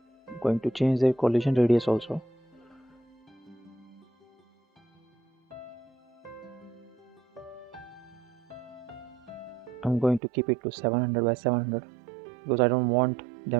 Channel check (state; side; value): drops out; left; at 10.2 s